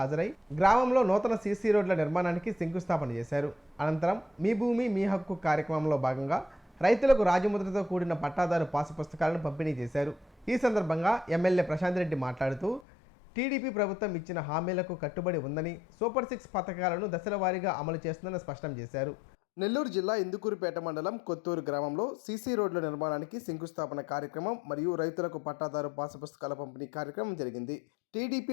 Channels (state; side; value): drops out; right; at 12.9 s